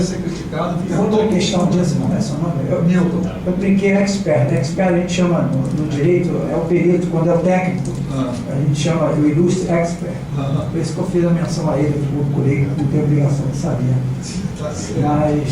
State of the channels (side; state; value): both; identical; correlation 1.00